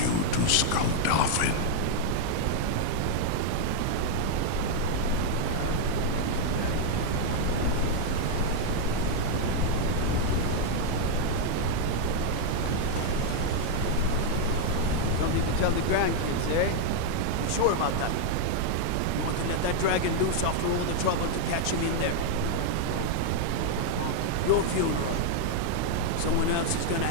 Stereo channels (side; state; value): both; different; correlation 0.00